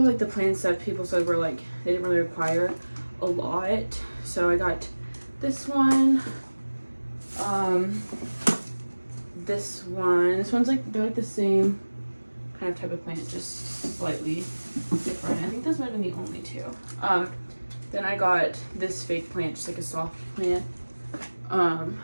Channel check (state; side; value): inverted; both; correlation -1.00